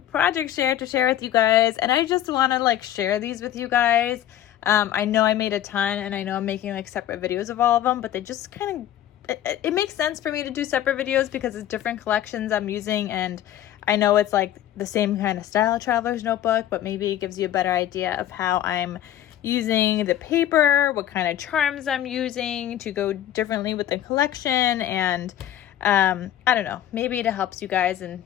project share to share with you guys, and I just want to share these with you guys. I know I made a ton and I know I'm making separate videos of all of them, but they just it makes sense for me to do separate videos because it's different collections I'm using, and I know it's the same kind of style traveler's notebook, but maybe it gives you a better idea of how I'm using the paper, what kind of charms I'm using to go differently with the collection, and I don't know, maybe it helps you guys, and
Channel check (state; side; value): quieter; right; 11.9 dB